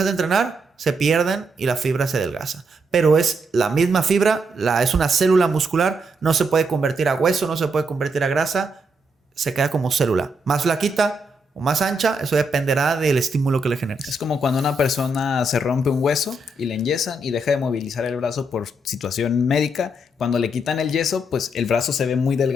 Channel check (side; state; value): both; normal; correlation 0.79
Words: de entrenar, se pierden y la fibra se adelgaza. Pero es la misma fibra, es una célula muscular, no se puede convertir a hueso, no se puede convertir a grasa, se queda como célula. Más flaquita o más ancha, eso dependerá del estímulo que le generes. Es como cuando una persona se rompe un hueso y le enyesan y deja de movilizar el brazo por situación médica. Cuando le quitan el yeso, pues el brazo se ve muy